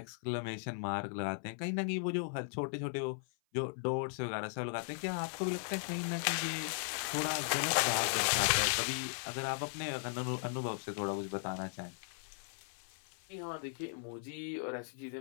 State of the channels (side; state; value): right; silent; 53 dB below the other